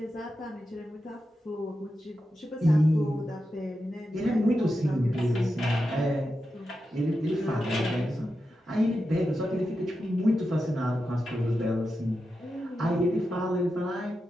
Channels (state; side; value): normal; both; correlation 0.89